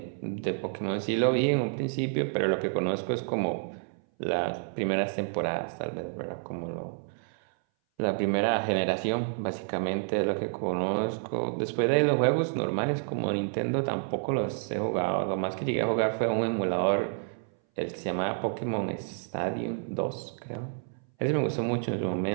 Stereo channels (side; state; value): left; silent; 58 dB below the other